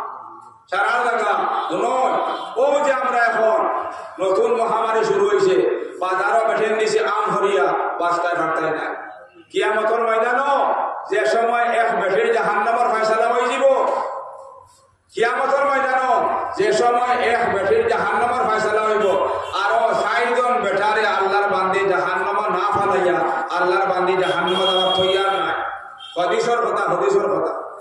সারা জায়গা নয় ও যে আমরা এখন নতুন মহামারী শুরু হয়েছে বাজারও বেঠেন দিছে আম হরিয়া বাস্তায় ভাটতায় নাই কিয়ামতের ময়দানও যে সময় এক বেঠের জাহান্নামের ফয়সালা হয়ে যাব কিয়ামতের ময়দানও যে সময় এক বেঠের জাহান্নামের ফয়সালা হইব আর ৬০ জন বেটারে আল্লাহর বান্দি জাহান্নামে না ফালাইয়া আল্লাহর বান্দি জাহান্নামে যাওয়ার তৈয়ার নাই হদিসের কথা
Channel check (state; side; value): identical; both; correlation 1.00